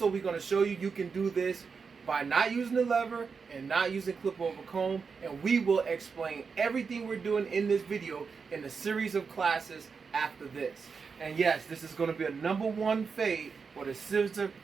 we're going to show you can do this by not using the lever and not using clip over comb, and we will explain everything we're doing in this video in a series of classes after this. And yes, this is going to be a #1 fade for the scissor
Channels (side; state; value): left; quieter; 5.4 dB